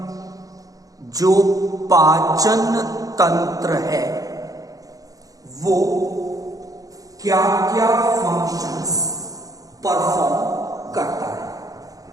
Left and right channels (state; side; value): late; left; 0.17 ms